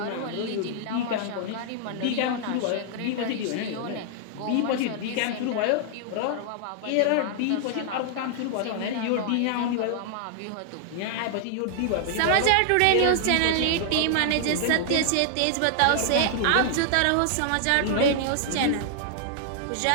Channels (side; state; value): both; different; correlation -0.01